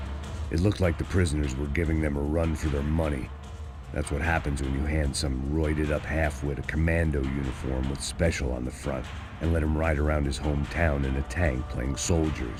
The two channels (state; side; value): identical; both; correlation 1.00